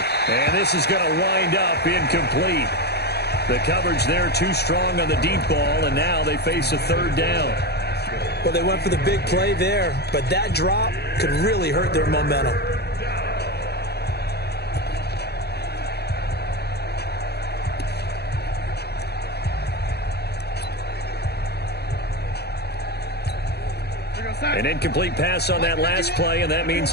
and this is going to wind up incomplete. The coverage there too strong on the deep ball, and now they face a 3rd down. Well, they went for the big play there, but that drop could really hurt their momentum. An incomplete pass on that last play, and that means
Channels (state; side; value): late; right; 0.48 ms